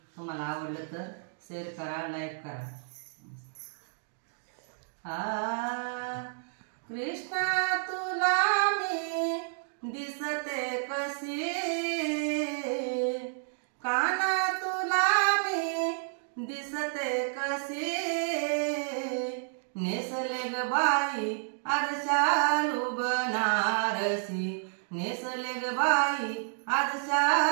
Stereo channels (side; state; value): left; silent; digital silence